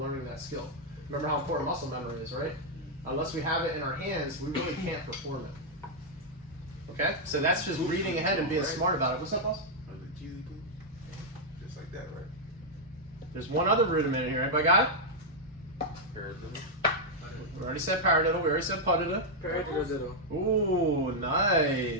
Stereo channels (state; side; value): normal; both; correlation -0.03